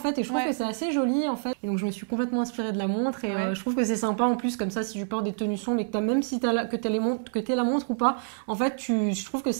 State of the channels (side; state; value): left; silent; 60 dB below the other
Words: et je trouve que c'est assez joli en fait. Et donc je me suis complètement inspirée de la montre et je trouve que c'est sympa en plus comme ça si tu portes des tenues sombres et que même si t'aies la montre ou pas, en fait je trouve que